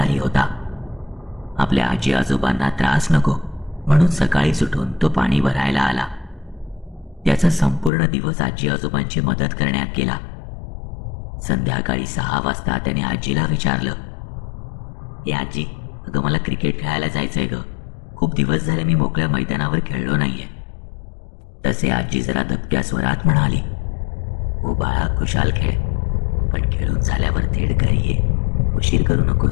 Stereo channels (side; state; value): right; drops out; at 7.9 s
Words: होता. आपल्या आजी आजोबांना त्रास नको म्हणून सकाळीच उठून तो पाणी भरायला आला. त्याचा संपूर्ण दिवस आजी आजोबांची मदत करण्यात गेला. संध्याकाळी 6 वाजता त्याने आजीला विचारलं, ए आजी, अगं मला क्रिकेट खेळायला जायचंय ग. खूप दिवस झाले मी मोकळ्या मैदानावर खेळलो नाहीये. तसे आजी जरा दबक्या स्वरात म्हणाली, हो बाळा, खुशाल खेळ, पण खेळून झाल्यावर थेट घरी ये, उशीर करू